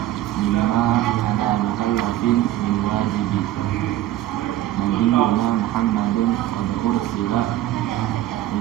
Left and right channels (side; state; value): left; quieter; 13.9 dB